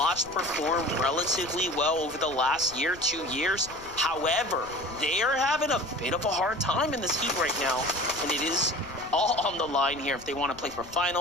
perform relatively well over the last year, 2 years. However, they are having a bit of a hard time in this heat right now, and it is all on the line here if they want to play for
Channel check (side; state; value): left; noise; rumble, 20 dB below the sound